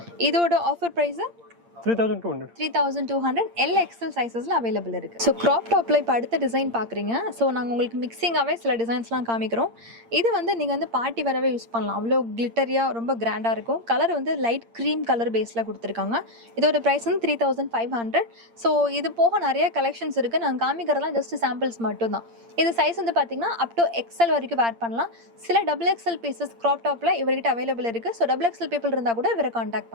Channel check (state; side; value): late; left; 8.7 ms